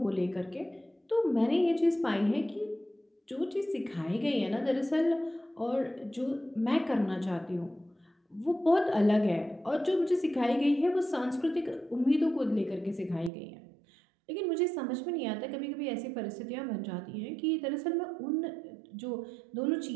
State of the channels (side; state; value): left; drops out; at 13.3 s